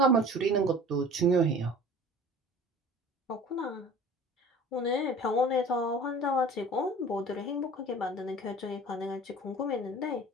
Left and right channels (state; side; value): normal; both; correlation 0.43